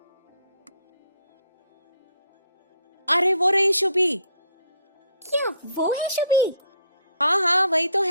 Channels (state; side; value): inverted; both; correlation -0.66